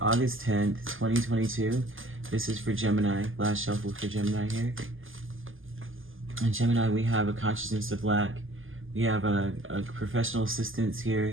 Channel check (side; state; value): left; late; 0.58 ms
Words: 10th, 2022. This is for Gemini, last shuffle for Gemini here. And Gemini, we have a consciousness of lack. We have a professional assistance